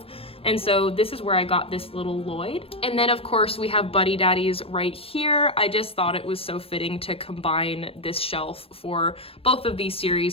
And so this is where I got this little Lloyd. And then of course we have Buddy Daddies right here. I just thought it was so fitting to combine this shelf for both of these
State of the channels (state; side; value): late; right; 0.28 ms